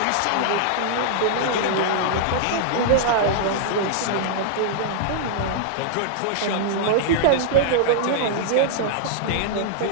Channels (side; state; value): both; different; correlation -0.02